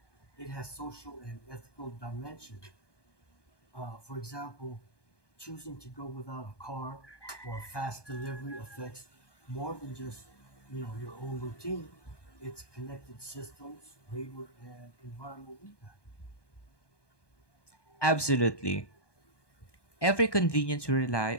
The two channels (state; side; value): late; right; 1.2 ms